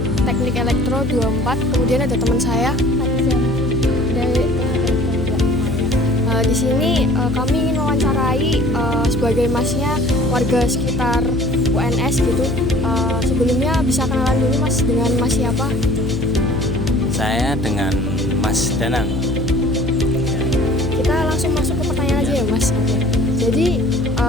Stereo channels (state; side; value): noise; left; hum, 5 dB below the sound